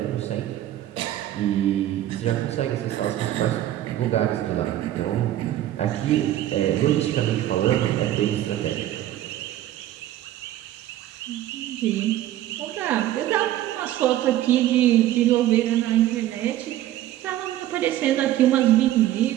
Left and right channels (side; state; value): left; quieter; 13.3 dB